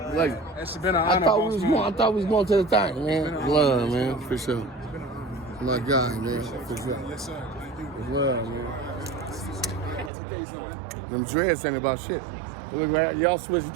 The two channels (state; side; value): drops out; left; at 10.1 s